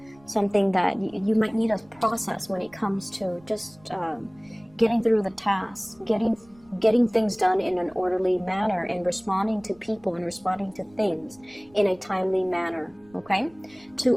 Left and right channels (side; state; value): right; noise; rumble, 29 dB below the sound